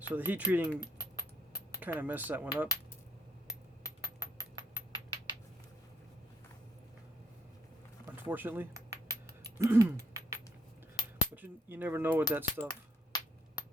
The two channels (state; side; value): normal; both; correlation 0.71